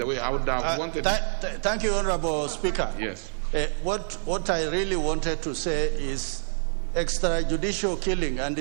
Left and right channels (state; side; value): silent; left; digital silence